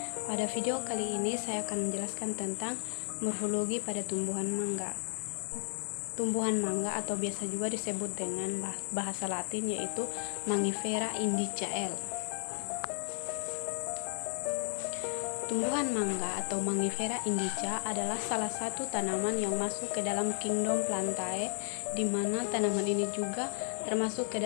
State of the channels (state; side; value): silent; right; digital silence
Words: Pada video kali ini saya akan menjelaskan tentang morfologi pada tumbuhan mangga. Tumbuhan mangga atau biasa juga disebut dengan bahasa Latin yaitu Mangifera indica L. Tumbuhan mangga atau Mangifera indica adalah salah satu tanaman yang masuk ke dalam kingdom Plantae, di mana tanaman ini juga termasuk ke